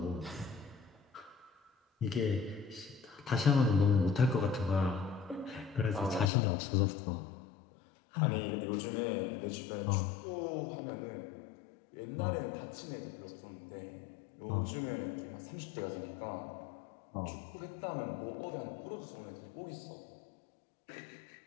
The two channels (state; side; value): drops out; right; at 6.3 s